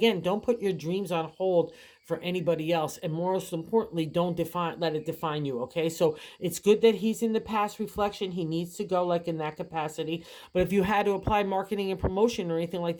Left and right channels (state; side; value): identical; both; correlation 1.00